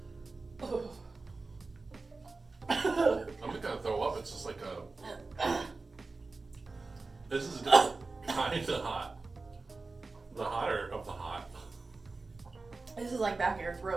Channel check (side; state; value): left; quieter; 3.7 dB